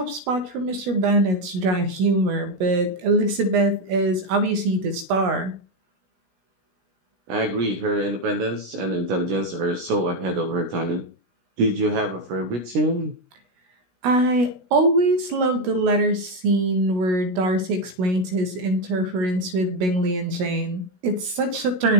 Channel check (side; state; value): left; late; 16 ms